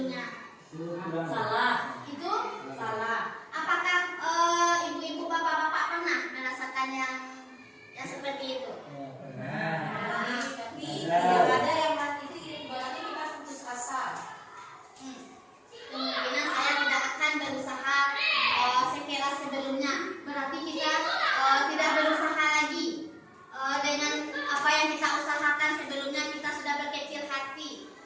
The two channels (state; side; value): identical; both; correlation 1.00